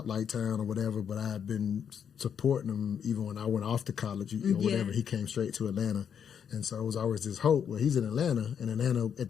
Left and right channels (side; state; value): right; quieter; 7.9 dB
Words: town or whatever, but I had been supporting him even when I went off to college or whatever. He came straight to Atlanta. And so it was always this hope. Well, he's in Atlanta, and Atlanta at